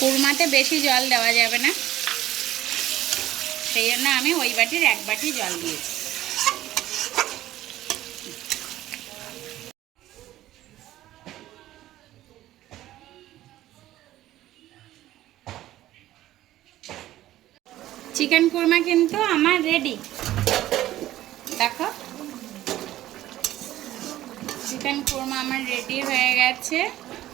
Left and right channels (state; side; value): quieter; left; 14.4 dB